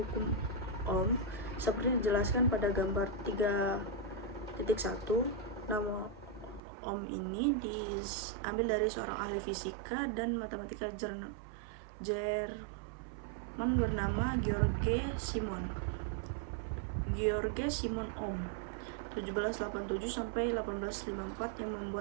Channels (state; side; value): drops out; left; at 6.6 s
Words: Ohm seperti dijelaskan pada gambar 3.1. Nama Ohm ini diambil dari seorang ahli fisika dan matematika Jerman bernama George Simon Ohm 1787 sampai 1854 yang